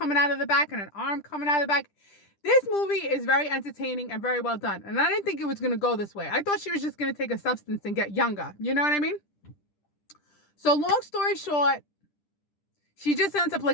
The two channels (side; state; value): right; late; 10 ms